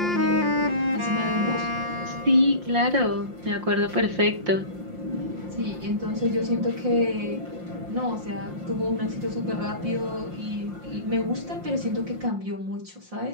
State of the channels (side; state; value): left; late; 5.7 ms